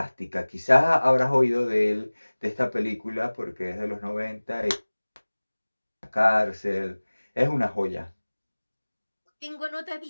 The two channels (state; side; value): inverted; both; correlation -1.00